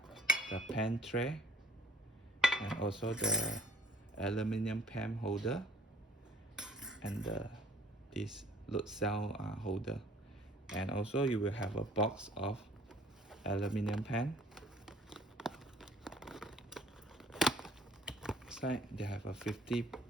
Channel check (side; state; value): both; normal; correlation 0.54